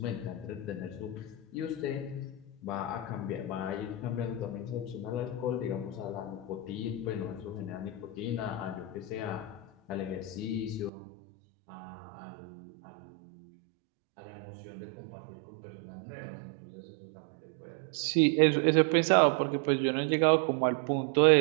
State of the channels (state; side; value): drops out; left; at 10.9 s